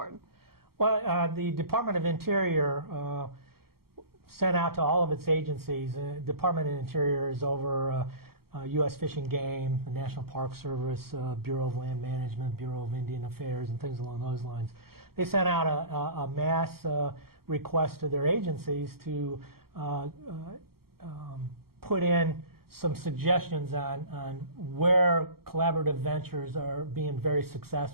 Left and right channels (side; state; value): left; late; 0.94 ms